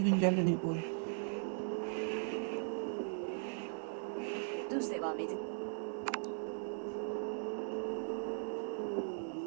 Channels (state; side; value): silent; left; digital silence